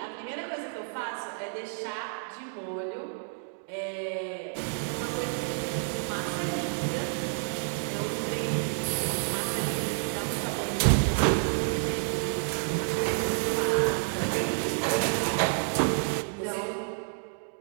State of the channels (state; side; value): silent; left; digital silence